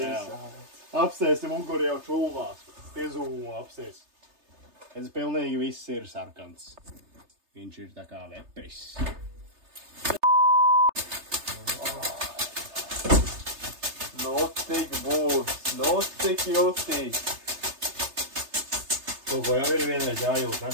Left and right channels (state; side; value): late; left; 3.3 ms